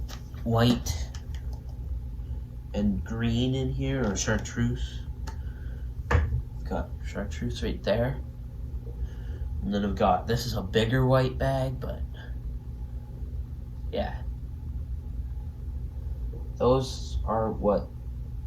white and green in here, or chartreuse. Got chartreuse right there. And then I've got, this is a bigger white bag, but yeah. Those are what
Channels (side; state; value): both; identical; correlation 1.00